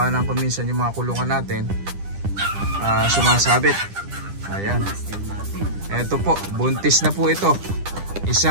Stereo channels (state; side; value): late; left; 10 ms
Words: ng kuminsan yung mga kulungan natin sumasabit. Ayan. Ito po, buntis na po ito.